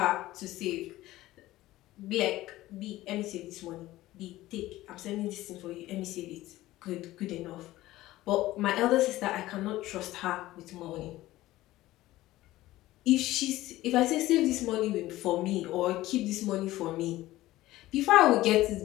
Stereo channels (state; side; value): quieter; right; 16.5 dB